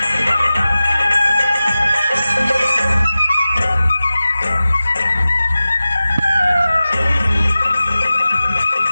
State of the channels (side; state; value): both; inverted; correlation -0.95